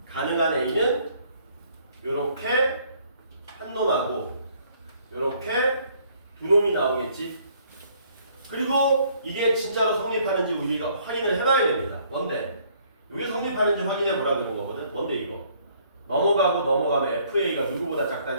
가능한 a는 요렇게 한 놈하고 요렇게 두 놈이 나오겠지? 그리고 이게 진짜로 성립하는지 우리가 확인을 해봐야 됩니다. 뭔데? 이게 성립하는지 확인해 보라 그런 거거든. 뭔데 이거? 넘어가면 FA가 누구보다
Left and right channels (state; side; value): inverted; both; correlation -0.63